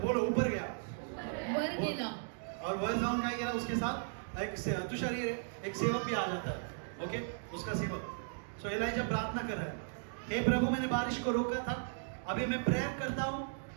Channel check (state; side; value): silent; left; digital silence